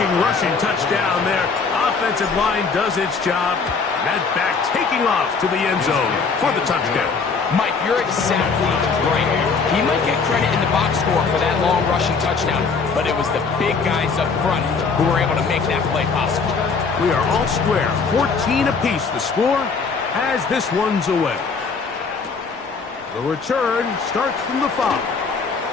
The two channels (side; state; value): right; quieter; 5.0 dB